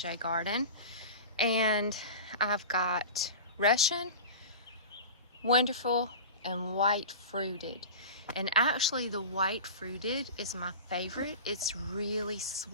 garden. And I've got Russian, Wonderful, and White Fruited. And actually the White Fruited is my favorite. It's really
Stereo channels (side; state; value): both; inverted; correlation -0.32